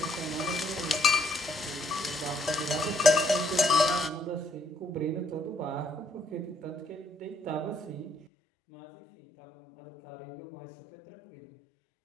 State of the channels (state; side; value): drops out; right; at 8.2 s